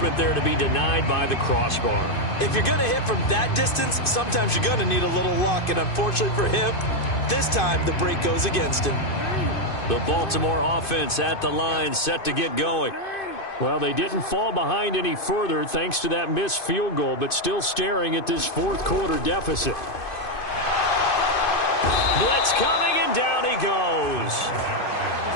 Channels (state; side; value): late; right; 2.5 ms